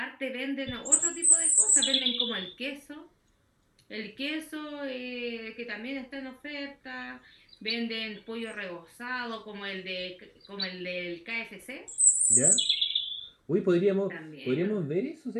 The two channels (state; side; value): identical; both; correlation 1.00